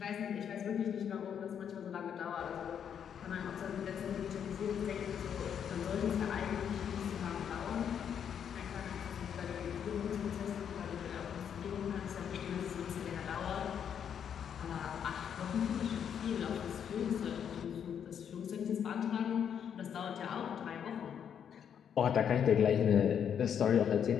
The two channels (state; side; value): quieter; right; 8.3 dB